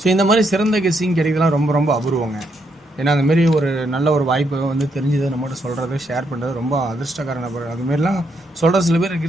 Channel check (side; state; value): both; normal; correlation 0.77